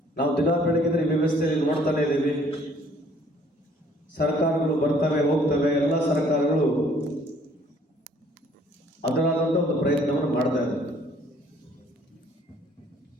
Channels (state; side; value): normal; both; correlation 0.59